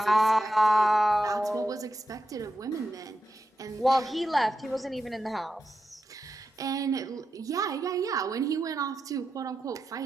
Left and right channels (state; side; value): normal; both; correlation 0.88